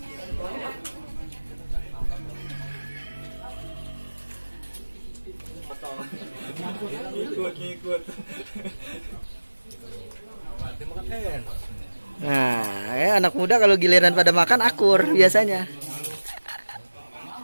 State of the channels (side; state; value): both; inverted; correlation -1.00